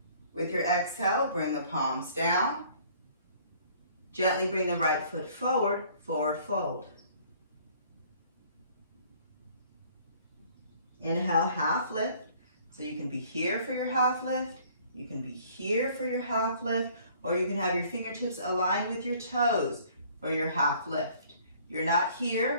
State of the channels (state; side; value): inverted; both; correlation -0.56